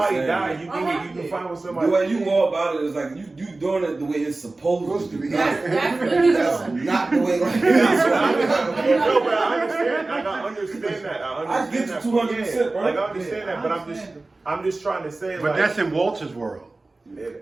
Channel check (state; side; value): quieter; left; 3.2 dB